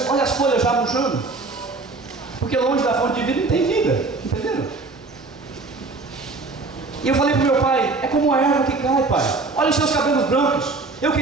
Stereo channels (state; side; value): quieter; left; 3.7 dB